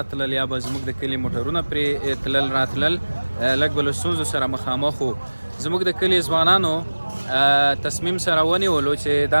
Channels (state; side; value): inverted; both; correlation -1.00